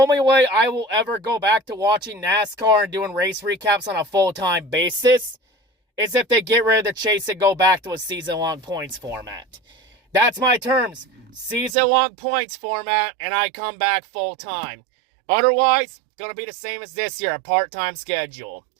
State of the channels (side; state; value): left; drops out; at 11.8 s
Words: way I will ever go back to watching NASCAR and doing race recaps on a full-time basis is if they get rid of the chase and go back to a season-long points format. That's my terms. Season-long points format, and I come back full-time. Otherwise, going to be the same as this year, a part-time schedule.